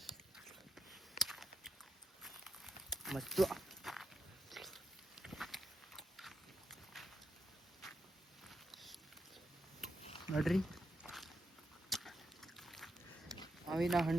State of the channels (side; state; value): both; normal; correlation 0.83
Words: ಮತ್ತು ನೋಡ್ರಿ, ಮಾವಿನ